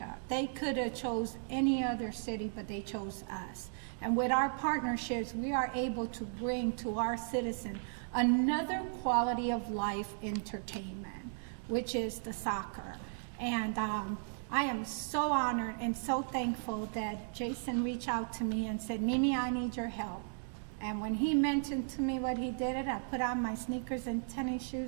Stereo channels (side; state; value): left; silent; digital silence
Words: They could have chose any other city, but they chose us. And with our partnerships, we are able to bring to our citizens another quality of life entertainment, which is the soccer. And I am so honored and so thankful that Jason reached out to me and said, Mimi, I need your help. And when he mentioned to me what he did, I put on my sneakers and tennis